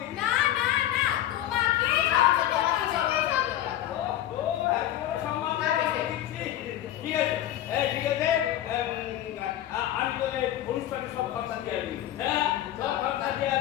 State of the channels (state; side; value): quieter; right; 12.7 dB